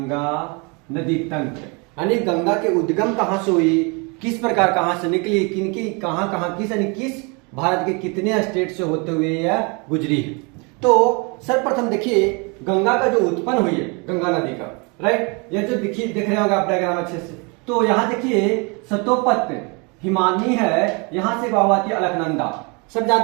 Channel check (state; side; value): quieter; left; 31.2 dB